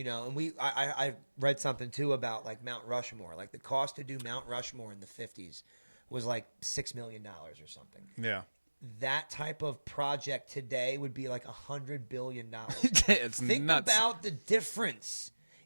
I read something too about like Mount Rushmore. Like the cost to do Mount Rushmore in the 50s was like $6 million or something. Yeah. That type of project today would be like $100 billion. It's Think nuts. about the difference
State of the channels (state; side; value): inverted; both; correlation -1.00